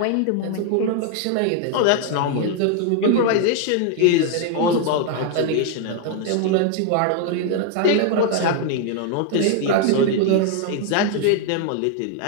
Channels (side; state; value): both; different; correlation 0.00